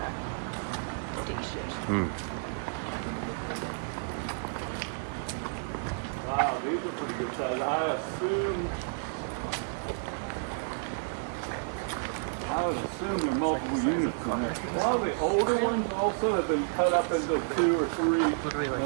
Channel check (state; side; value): silent; left; digital silence